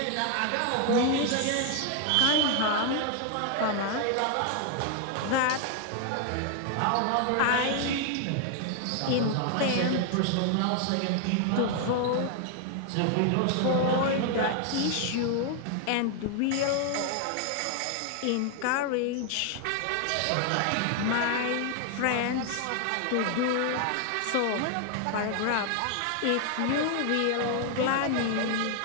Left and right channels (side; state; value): both; different; correlation 0.00